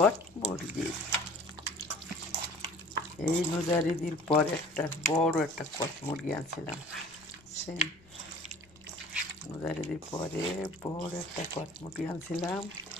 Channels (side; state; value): left; noise; rumble, 27 dB below the sound